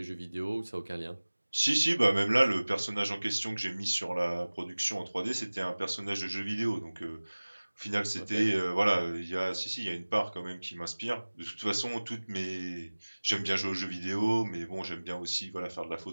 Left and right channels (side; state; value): both; inverted; correlation -1.00